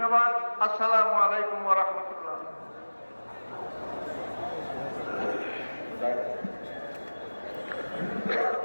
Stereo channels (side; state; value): both; inverted; correlation -1.00